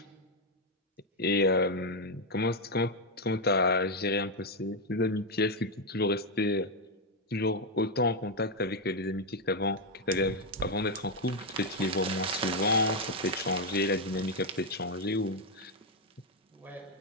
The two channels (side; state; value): both; normal; correlation 0.03